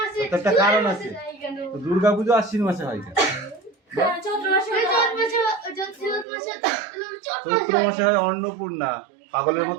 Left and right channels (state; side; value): drops out; left; at 6.2 s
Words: একটা কারণ আছে। দুর্গা পুজো আশ্বিন মাসে হয় কেন? চৈত্র মাসে হয় অন্নপূর্ণা। পাগলের